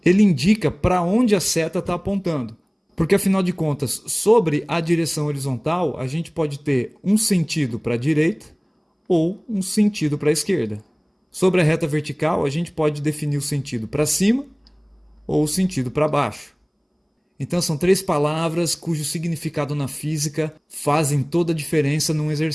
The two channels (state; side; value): identical; both; correlation 1.00